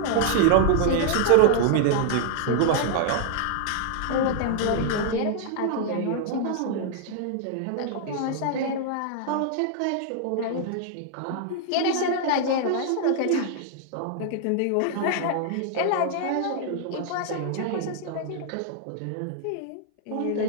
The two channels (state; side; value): different; both; correlation 0.00